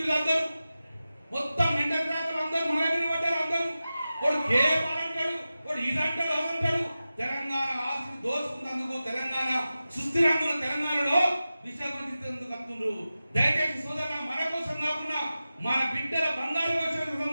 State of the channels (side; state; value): both; inverted; correlation -0.94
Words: మొత్తం మెంటల్ జాతలు అందరూ మన మీద పడ్డారు. అందరూ వాడు కేపాల్ అంటాడు, వాడు ఇదంటాడు, అదంటాడు. తెలంగాణ ఆస్తి దోచుకున్నందుకు, తెలంగాణ సుస్థిరంగా తెలంగాణలో విశ్రాంతించేందుకు కత్తులు. దయచేసి సోదరులు, మన కోసం కాకుండా మన బిడ్డల బంగారు